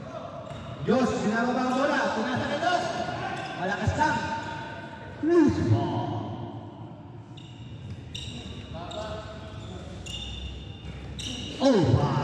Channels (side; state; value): both; identical; correlation 1.00